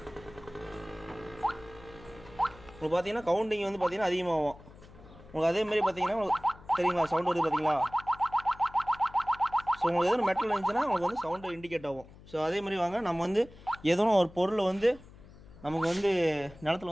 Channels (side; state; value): left; noise; hum, 21 dB below the sound